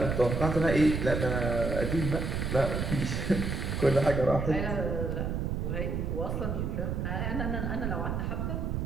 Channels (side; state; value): right; noise; rumble, 1 dB below the sound